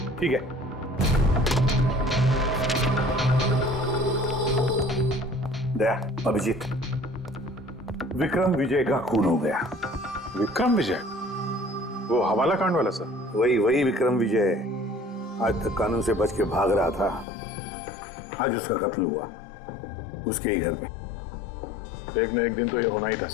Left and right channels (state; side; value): drops out; right; at 17.2 s